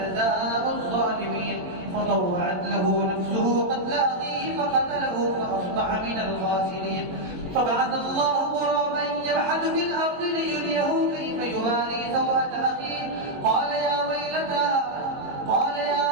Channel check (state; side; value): late; left; 22 ms